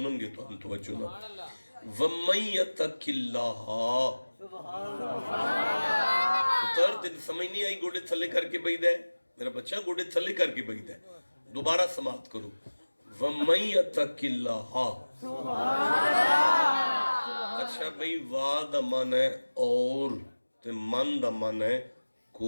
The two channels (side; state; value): both; inverted; correlation -1.00